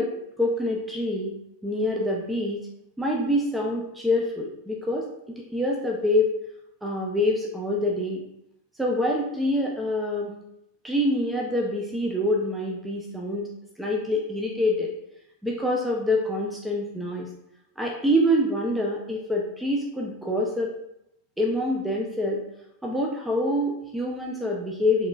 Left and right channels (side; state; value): both; normal; correlation 0.40